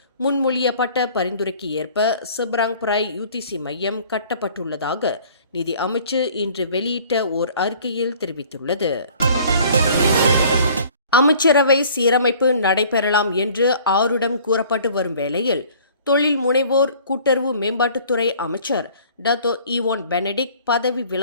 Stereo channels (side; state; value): both; inverted; correlation -0.52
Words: முன்மொழியப்பட்ட பரிந்துரைக்கு ஏற்ப செப்ராங்பராய் UTC மையம் கட்டப்பட்டுள்ளதாக நிதி அமைச்சு இன்று வெளியிட்ட ஓர் அறிக்கையில் தெரிவித்துள்ளது. அமைச்சரவை சீரமைப்பு நடைபெறலாம் என்று ஆருடம் கூறப்பட்டு வரும் வேளையில் தொழில் முனைவோர் கூட்டுறவு மேம்பாட்டுத்துறை அமைச்சர் டத்தோ ஈவான் பெனடிக்ட் பதவி